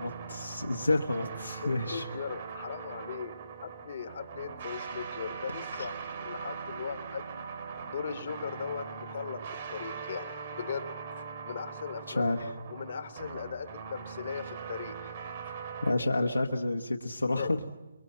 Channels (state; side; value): inverted; both; correlation -0.83